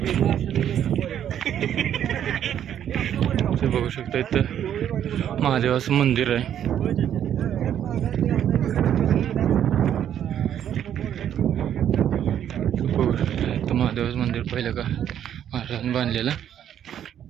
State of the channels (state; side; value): quieter; left; 10.0 dB